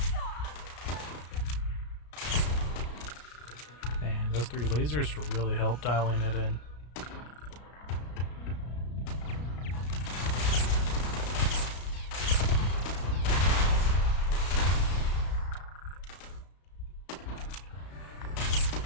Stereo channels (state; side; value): late; right; 33 ms